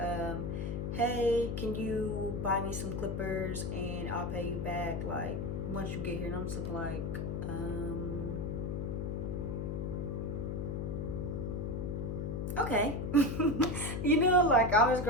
hey, can you buy me some clippers and I'll pay you back, like, once you get here. And I'm just looking like, okay. You know, like, I'm his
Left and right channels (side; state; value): left; noise; hum, 2 dB below the sound